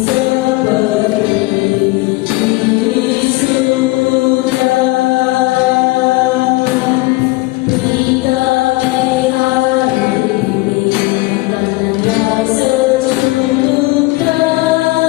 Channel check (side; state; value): right; quieter; 21.6 dB